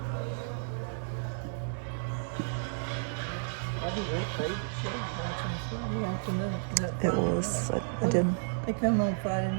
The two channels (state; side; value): silent; left; digital silence